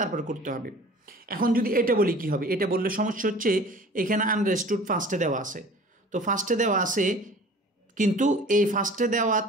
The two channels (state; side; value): normal; both; correlation 0.45